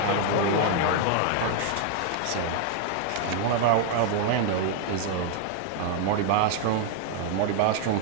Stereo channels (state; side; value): different; both; correlation 0.00